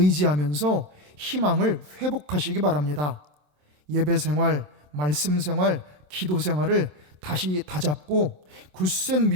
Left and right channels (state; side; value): late; left; 27 ms